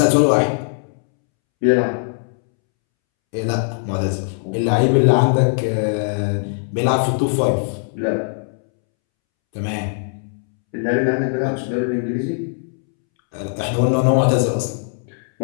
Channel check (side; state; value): right; silent; 66 dB below the other